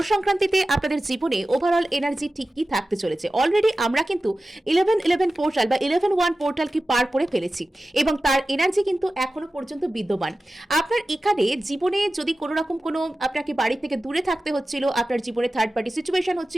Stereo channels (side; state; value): both; normal; correlation 0.95